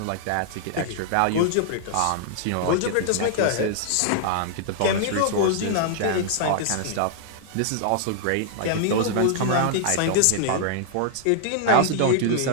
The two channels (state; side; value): different; both; correlation -0.01